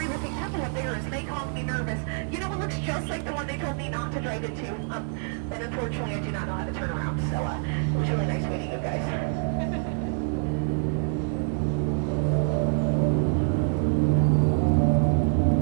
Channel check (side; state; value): left; silent; 56 dB below the other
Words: looking temple up there is Mekong Me Nervous. You know, it looks just like the one they told me not to drive into. But unfortunately, I do not know how to turn around, so it was really nice meeting you guys.